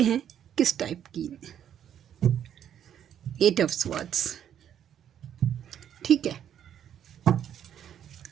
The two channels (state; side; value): quieter; left; 9.7 dB